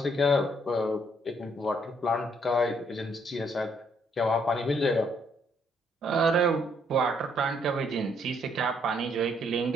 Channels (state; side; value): normal; both; correlation 0.69